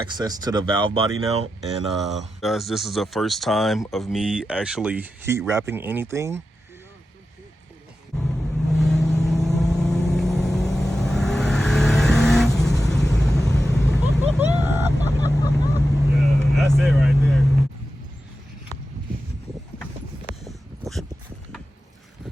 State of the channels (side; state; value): both; normal; correlation 0.91